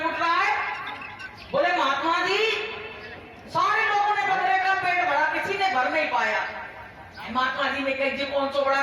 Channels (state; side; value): identical; both; correlation 1.00